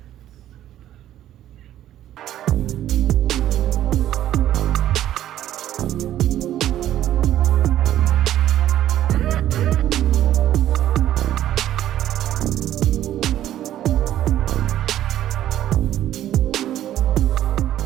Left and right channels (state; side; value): quieter; left; 12.3 dB